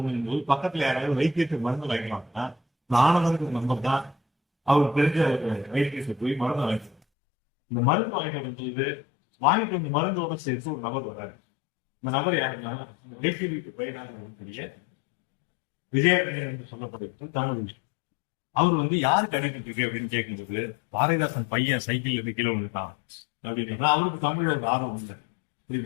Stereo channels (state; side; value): drops out; right; at 7.0 s